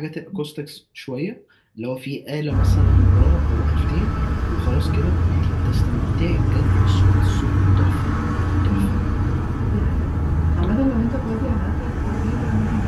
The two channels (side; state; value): both; identical; correlation 1.00